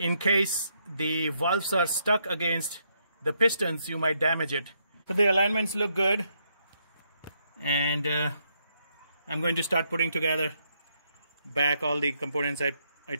case the valves are stuck against the pistons, you might damage it. So the alignments look good, and I'm going to start putting together back all the components I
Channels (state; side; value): inverted; both; correlation -0.76